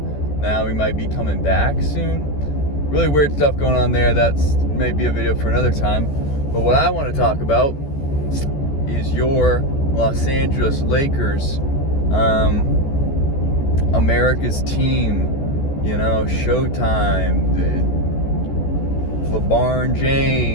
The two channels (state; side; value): late; right; 14 ms